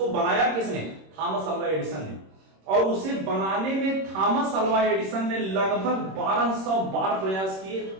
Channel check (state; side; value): late; left; 26 ms